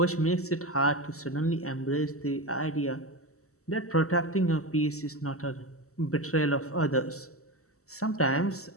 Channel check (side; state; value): right; late; 0.64 ms